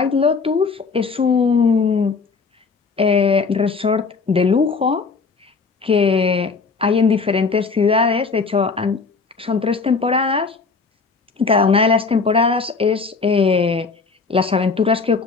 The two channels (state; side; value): quieter; right; 4.7 dB